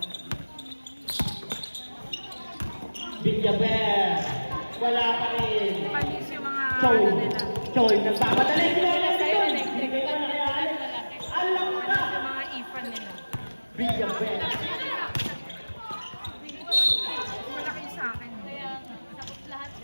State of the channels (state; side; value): inverted; both; correlation -1.00